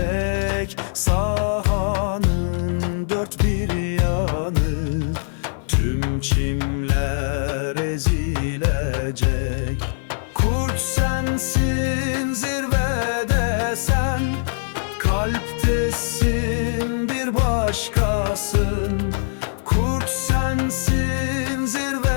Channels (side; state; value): right; silent; 57 dB below the other